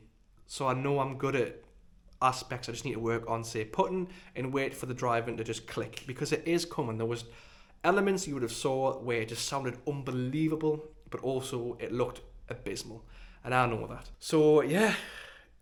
So I know I'm good at aspects I just need to work on, say putting, and wait for the driving to just click, because it is coming. There was elements you would have saw where it just sounded unbelievable, but also it looked abysmal, and I know that. So yeah,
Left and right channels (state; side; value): identical; both; correlation 1.00